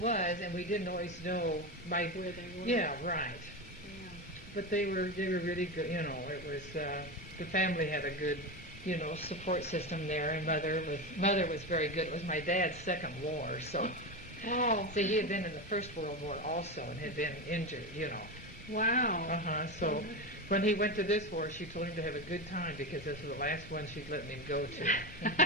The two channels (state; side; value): normal; both; correlation 0.18